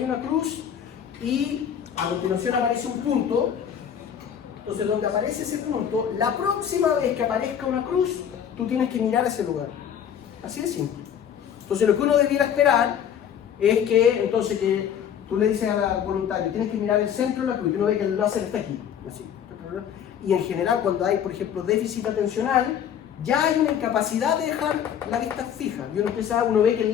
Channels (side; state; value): right; quieter; 8.8 dB